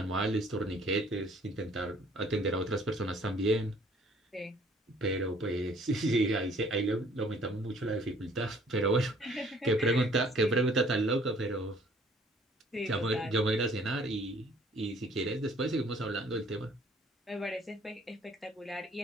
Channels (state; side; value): normal; both; correlation 0.58